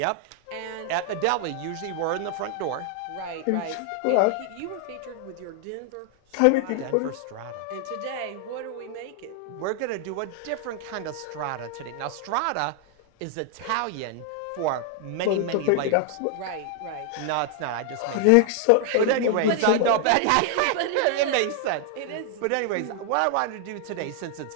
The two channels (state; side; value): different; both; correlation 0.00